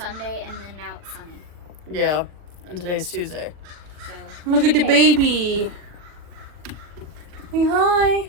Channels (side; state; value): left; late; 40 ms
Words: and then now it's sunny. Yeah, and today's Tuesday. So, Look at the baby. Hey, hi.